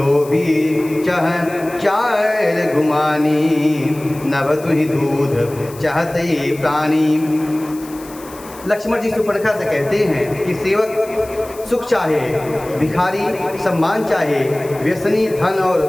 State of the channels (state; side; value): noise; left; hiss, 19 dB below the sound